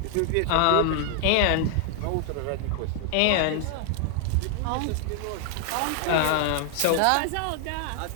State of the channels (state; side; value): different; both; correlation 0.00